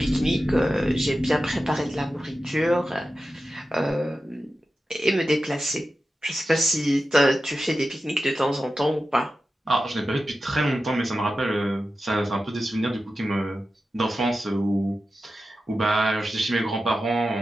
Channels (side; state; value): both; normal; correlation 0.92